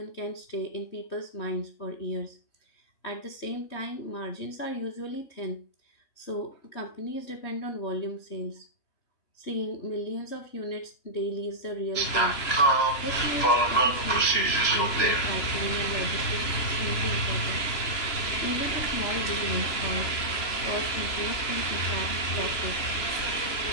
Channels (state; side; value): late; right; 3.0 ms